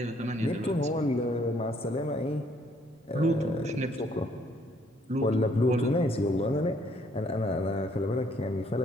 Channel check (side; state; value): both; normal; correlation 0.66